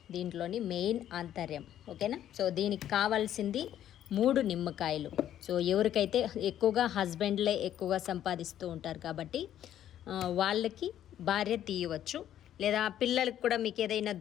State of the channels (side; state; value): right; quieter; 11.2 dB